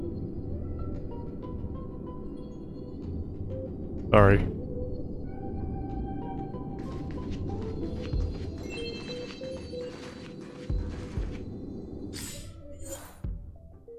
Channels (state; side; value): identical; both; correlation 1.00